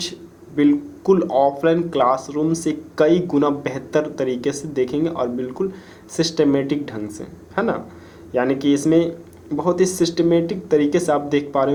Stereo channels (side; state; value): both; identical; correlation 1.00